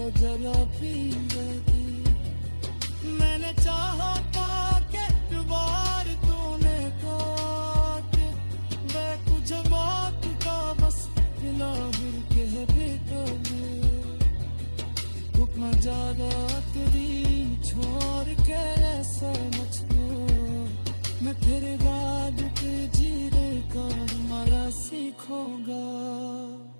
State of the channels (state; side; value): inverted; both; correlation -1.00